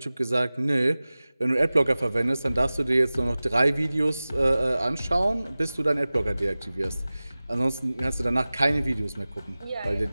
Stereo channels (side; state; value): both; inverted; correlation -0.98